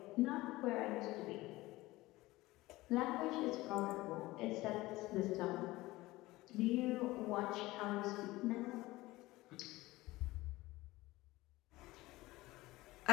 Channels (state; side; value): quieter; right; 19.1 dB